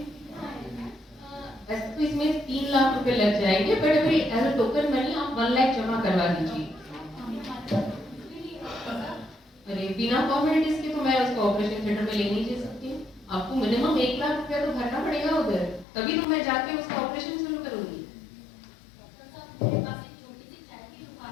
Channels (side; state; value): right; drops out; at 15.9 s